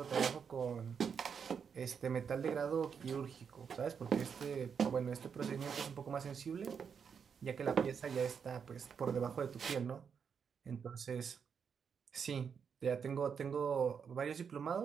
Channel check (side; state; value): left; quieter; 6.7 dB